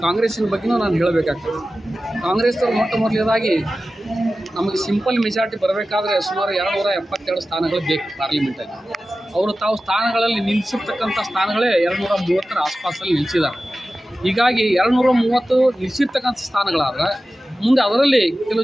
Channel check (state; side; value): normal; both; correlation 0.95